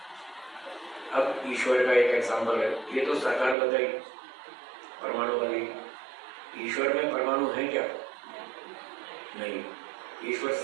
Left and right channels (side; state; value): left; drops out; at 3.6 s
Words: अब ईश्वर का एक एग्जाम्पल है, ये तो साकार बताई परमाणु वाली। ईश्वर में परमाणु है क्या? नहीं। ईश्वर